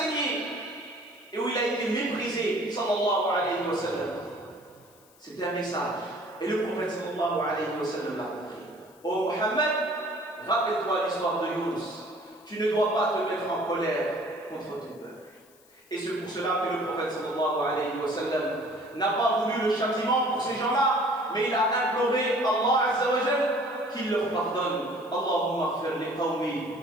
et où il a été méprisé, sallallahu alayhi wa sallam? C'était un message. Et le prophète sallallahu alayhi wa sallam l'a compris. Oh Mohammed, rappelle-toi l'histoire de Yunus. Tu ne dois pas te mettre en colère contre ton peuple. Et c'est pour cela que le prophète sallallahu alayhi wa sallam n'a pas voulu le châtiment pour ces gens-là, mais il a imploré Allah Azza wa Jal qu'il leur pardonne. Allahumma ighfir li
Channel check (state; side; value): noise; left; hiss, 28 dB below the sound